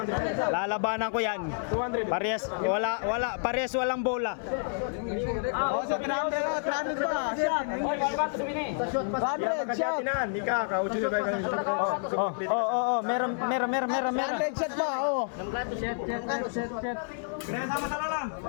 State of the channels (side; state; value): right; silent; 58 dB below the other